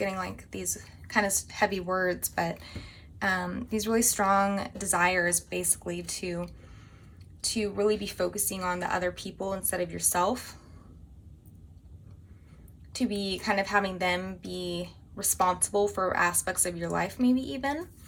like these kind of heavy words, but these really strong desires basically to really be focusing on the other people instead of yourself, to be kind of having them be responsible for aspects of your life, maybe even,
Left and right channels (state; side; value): identical; both; correlation 1.00